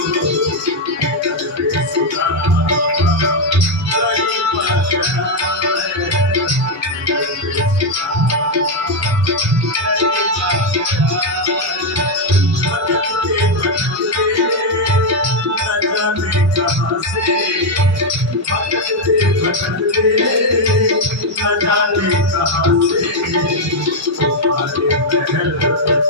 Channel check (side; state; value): both; normal; correlation 0.02